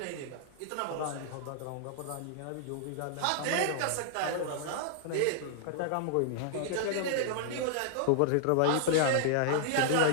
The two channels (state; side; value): different; both; correlation -0.01